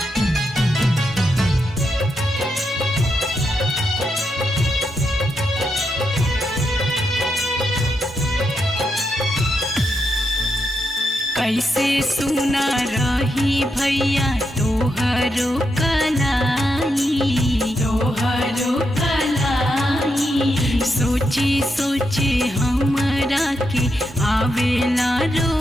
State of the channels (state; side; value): normal; both; correlation 0.83